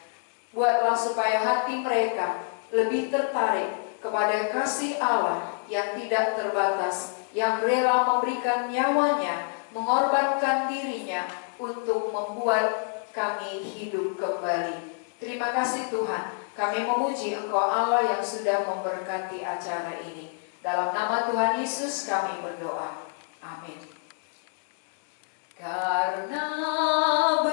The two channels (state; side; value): silent; right; 60 dB below the other